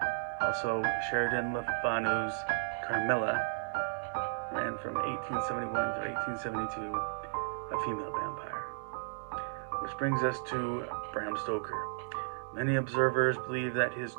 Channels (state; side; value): silent; left; digital silence